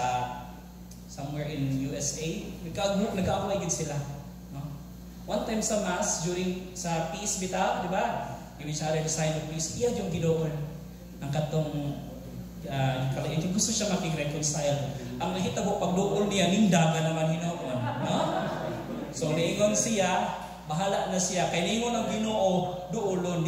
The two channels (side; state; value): both; identical; correlation 1.00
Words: somewhere in USA. Nag-aaway gid sila. No? One time sa Mass, during sa peace bita, di ba? Give each other the sign of peace. Iya yung gidoon ang katong kalaiti. Gusto siya makig-reconcile. Ang nahitabo pagduol niya, nindaga naman hinoon. No? So, niingon siya, bahala na siya. Kaya niingon ang Ginoo, duolon,